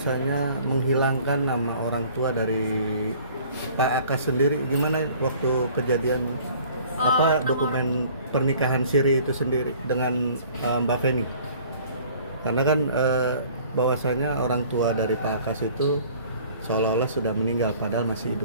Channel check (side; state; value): both; inverted; correlation -0.52